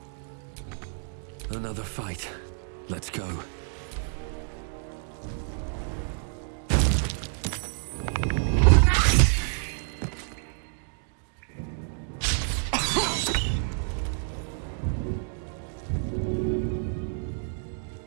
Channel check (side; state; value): left; silent; 56 dB below the other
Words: Another fight. Let's go.